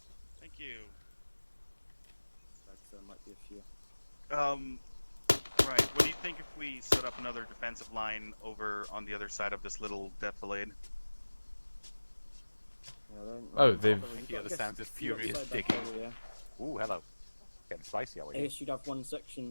Thank you. There might be a few. Right. What do you think if we set up another defensive line over on the other side of this little defilade? Oh, they've... Yeah, the sounds of furious digging. Ooh, hello. Getting spicy, are we? I guess you'd have one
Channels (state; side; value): inverted; both; correlation -1.00